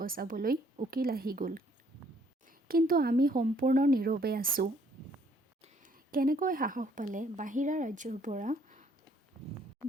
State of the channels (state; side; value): normal; both; correlation 0.64